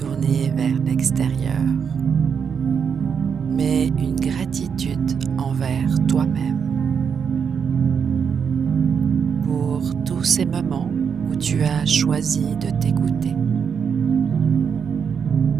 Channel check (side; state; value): left; quieter; 6.7 dB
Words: vers l'extérieur, mais une gratitude envers toi-même pour tous ces moments où tu as choisi de t'écouter,